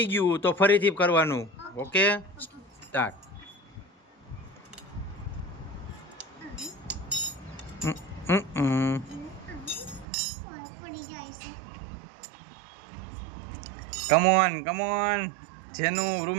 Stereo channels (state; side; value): drops out; left; at 10.1 s